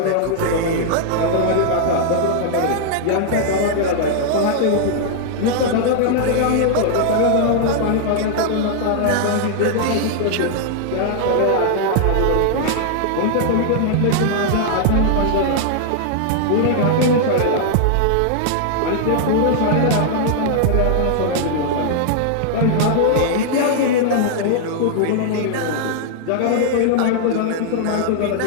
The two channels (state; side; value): different; both; correlation -0.01